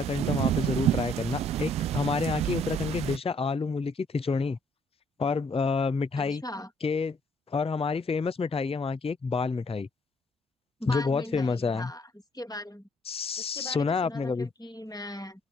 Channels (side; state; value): both; normal; correlation 0.65